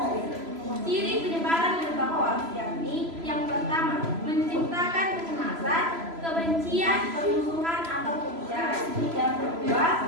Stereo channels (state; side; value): late; left; 3.0 ms